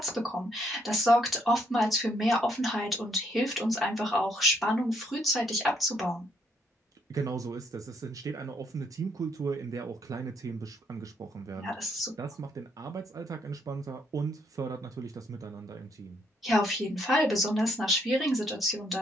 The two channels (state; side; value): normal; both; correlation 0.71